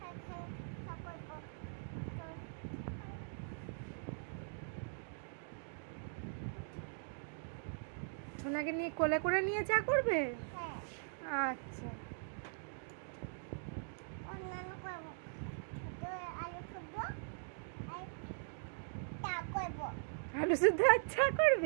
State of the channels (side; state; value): left; silent; digital silence